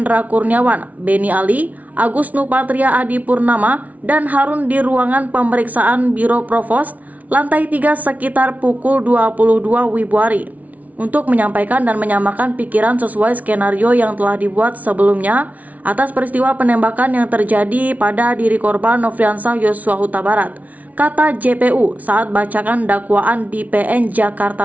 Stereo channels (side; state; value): left; late; 0.072 ms